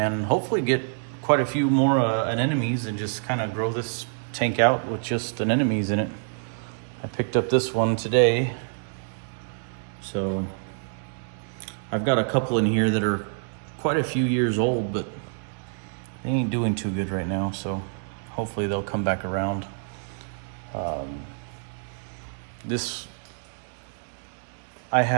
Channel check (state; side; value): silent; left; digital silence